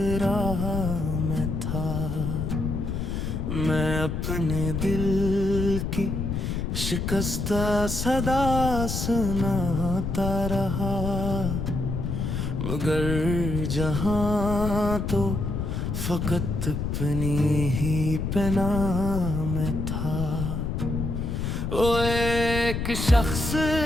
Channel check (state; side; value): noise; left; rumble, 2 dB below the sound